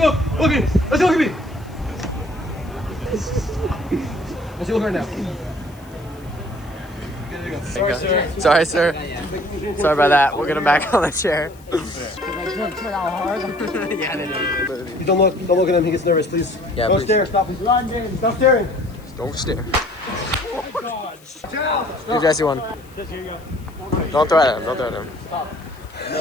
look! Look at me! Let's see, look at me! Let's see, look right now. Sorry, sir. Sorry, sir. Sorry about that. We'll get him back on the chair. Turn out hard. Yeah, they do. Please don't look at him. He gets nervous, please. Yeah, Don't please. stare. Stop. London. Stop staring. Don't stare. Here, Jesse, one. Don't throw at him. Don't throw at him.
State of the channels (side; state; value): left; noise; hiss, 27 dB below the sound